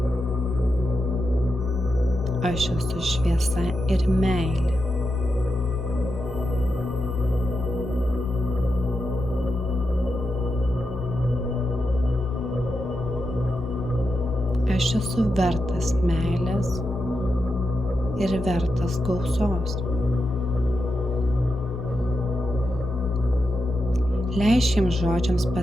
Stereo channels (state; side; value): noise; left; hum, 17 dB below the sound